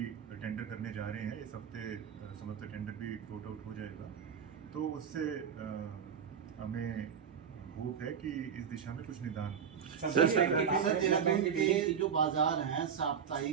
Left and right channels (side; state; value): left; quieter; 7.4 dB